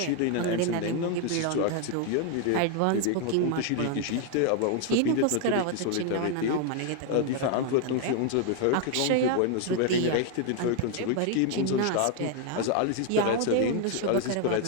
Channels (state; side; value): different; both; correlation 0.00